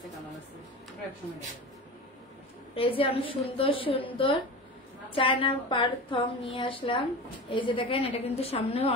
এই যে অনেক সুন্দর সুন্দর চায়না পার থং নিয়ে আসলাম। এই যে দেখেন, এটা কিন্তু সামনেও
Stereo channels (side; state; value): both; normal; correlation 0.30